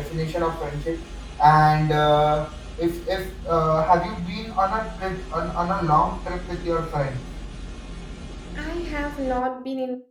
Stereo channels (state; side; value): identical; both; correlation 1.00